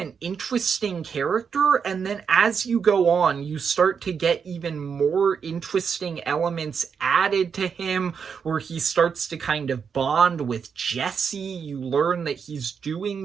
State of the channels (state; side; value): quieter; left; 6.5 dB